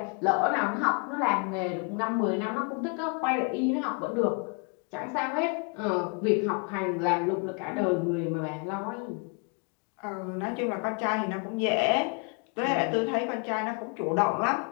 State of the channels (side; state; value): right; quieter; 37.3 dB